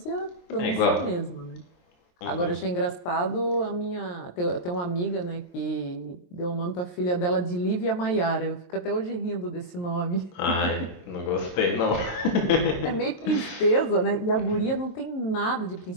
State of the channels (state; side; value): late; right; 23 ms